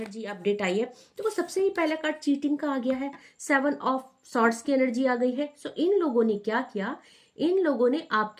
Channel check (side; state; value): both; identical; correlation 1.00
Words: अपडेट आई है। तो सबसे ही पहला कार्ड चीटिंग का आ गया है, 7 ऑफ सॉर्ड्स की एनर्जी आ गई है। सो इन लोगों ने क्या किया, इन लोगों ने